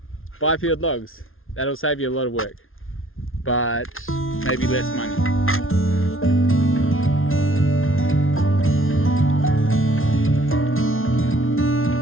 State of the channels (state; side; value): late; right; 0.60 ms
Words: Buy peeled logs. That'll save you a lot of work, but maybe less money.